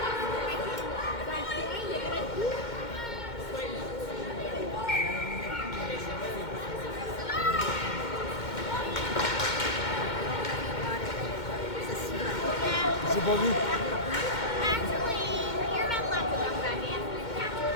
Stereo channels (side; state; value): right; late; 2.1 ms